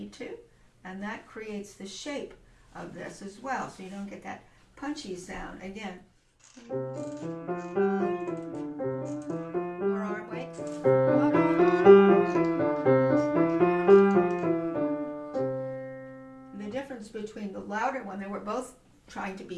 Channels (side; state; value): both; identical; correlation 1.00